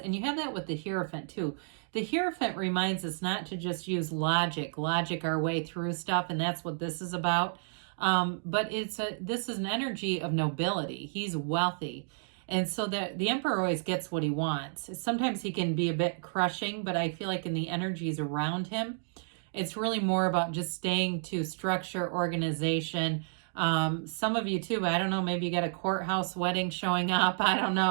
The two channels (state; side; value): silent; left; digital silence